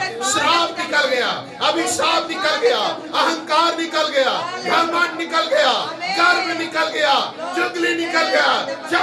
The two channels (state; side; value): identical; both; correlation 1.00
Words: श्राप निकल गया, अभिशाप निकल गया, अहंकार निकल गया, घमंड निकल गया, गर्व निकल गया, चुगली निकल गया,